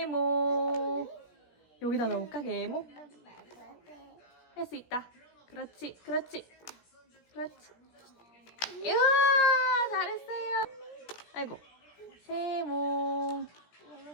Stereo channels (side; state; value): right; late; 17 ms